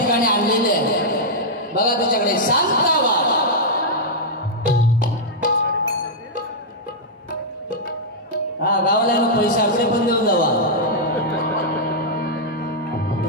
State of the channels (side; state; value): both; normal; correlation -0.07